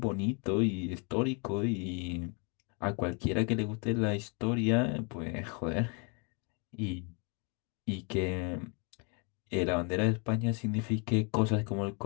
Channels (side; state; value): right; quieter; 34.9 dB